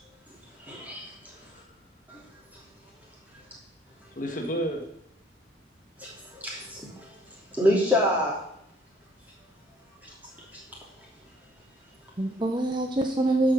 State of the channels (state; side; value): normal; both; correlation 0.62